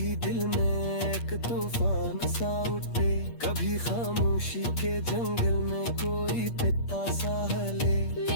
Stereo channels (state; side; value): late; right; 8.5 ms